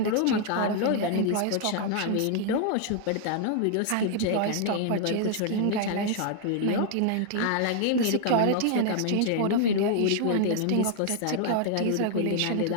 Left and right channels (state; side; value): different; both; correlation 0.00